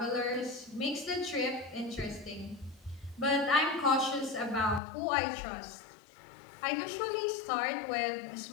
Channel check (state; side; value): drops out; right; at 4.8 s